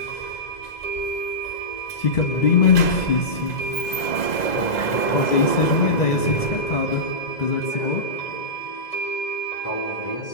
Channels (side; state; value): right; late; 2.0 ms